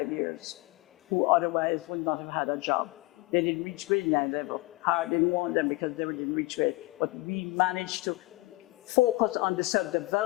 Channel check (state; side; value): quieter; right; 22.3 dB